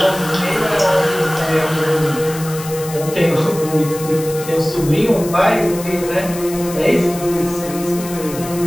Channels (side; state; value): left; noise; hiss, 13 dB below the sound